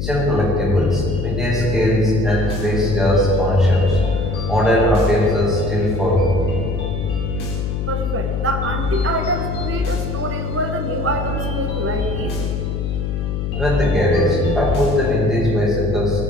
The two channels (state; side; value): noise; left; hum, 3 dB below the sound